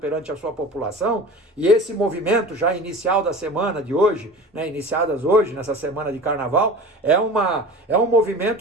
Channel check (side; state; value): both; normal; correlation 0.36